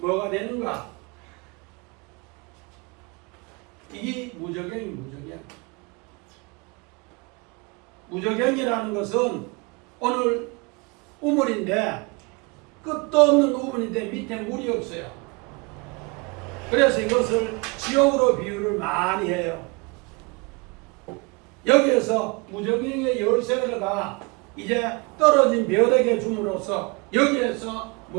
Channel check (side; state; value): left; quieter; 28.9 dB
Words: 되는가? 이게 무적경이라는 것은 오늘 우물인데 끝도 없는 우물인데 밑에 물이 없어요. 그래서 이것을 지옥으로 비유를 많이 해요. 여기에서 무적경의 열쇠가 이제 떨어진 벼락에 줌으로써 여기에서